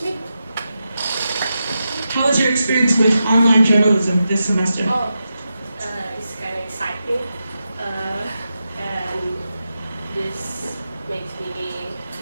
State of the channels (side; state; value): both; inverted; correlation -0.89